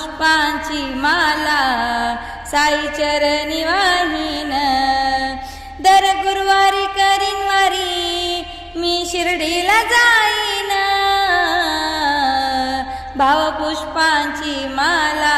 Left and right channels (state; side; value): identical; both; correlation 1.00